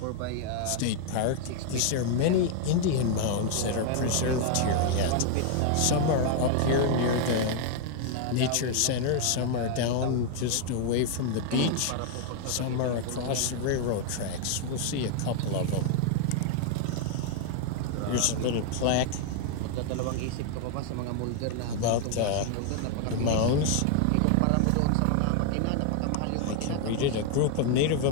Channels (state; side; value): different; both; correlation 0.00